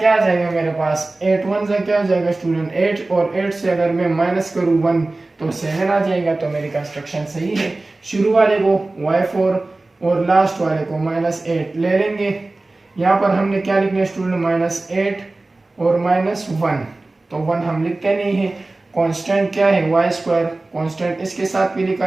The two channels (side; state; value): left; quieter; 3.1 dB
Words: आ जाएगा मेरे पास, 8 1 सा क्या आ जाएगा स्टूडेंट 8, और 8 से अगर मैं माइनस करूँ 1 तो 7 आ जाएगा। तो मेरी कंस्ट्रक्शन सही है। शुरू वाले को y4 और लास्ट वाले को -8 ले लेंगे। यहाँ पर हमने क्या लिखना है स्टूडेंट, -8 और -1, तो 1 हम लिखते नहीं है। कांस्टेंट क्या है y², कांस्टेंट इसके साथ भी लिखा